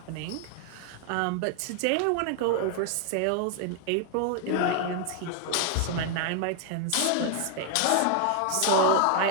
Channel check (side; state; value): both; different; correlation 0.00